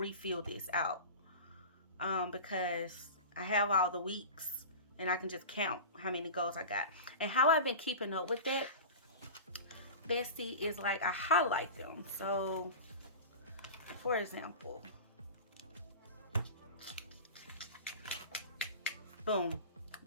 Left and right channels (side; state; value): both; inverted; correlation -0.32